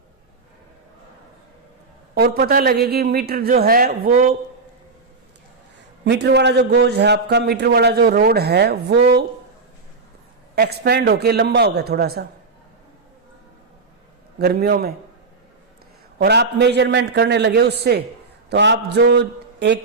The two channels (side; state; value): left; quieter; 4.1 dB